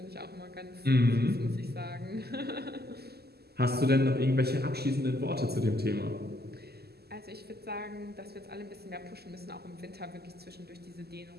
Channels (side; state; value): left; late; 0.46 ms